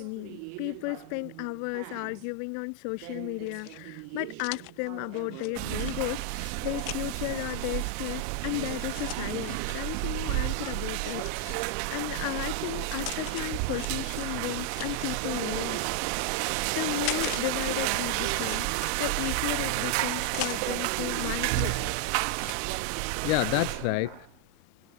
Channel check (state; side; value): different; both; correlation 0.00